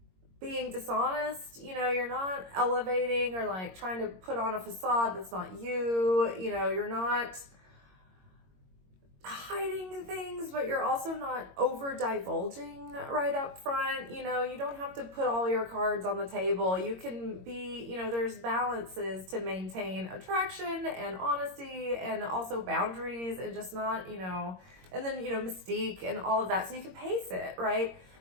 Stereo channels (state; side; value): late; left; 22 ms